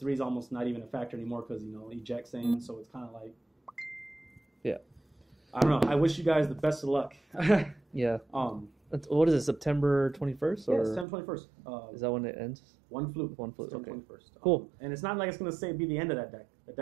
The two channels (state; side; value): drops out; left; at 11.1 s